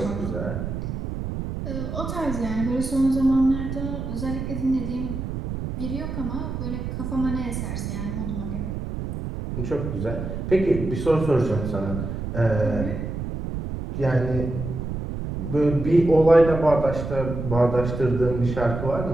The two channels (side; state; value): right; noise; rumble, 5 dB below the sound